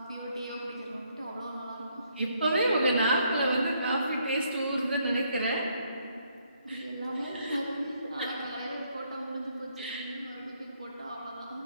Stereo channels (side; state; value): both; inverted; correlation -0.71